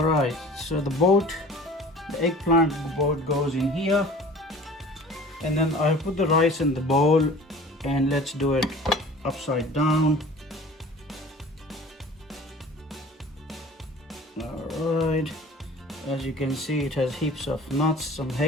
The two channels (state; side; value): normal; both; correlation 0.44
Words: right, so the eggplant boat goes in here. And then I put the rice in the bowl and let's do it upside down. All right, as you can see, it has heaps of nuts, some